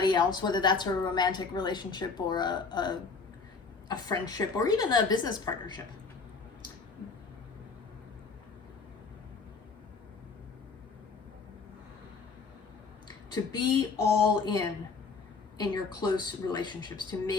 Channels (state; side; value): quieter; right; 4.7 dB